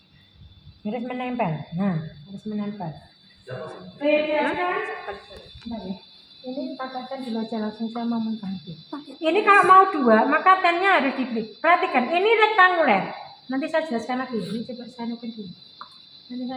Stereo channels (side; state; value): both; identical; correlation 1.00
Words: Harus menempel. Nah, harus menempel. Bedakan. Ini pakaikan dulu aja langsung saya mau mengganti. Ini kalau mau dua, maka tennya harus dibeli. Perhatikan, ini rektanguler. Nanti saya jelaskan lagi. Ini coba saya nukil dulu. Nanti